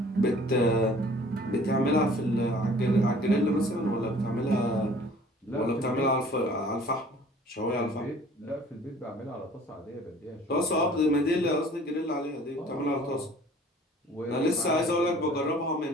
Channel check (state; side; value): normal; both; correlation 0.51